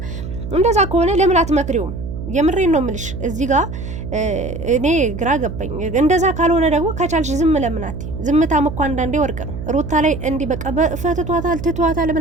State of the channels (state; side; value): noise; right; hum, 8 dB below the sound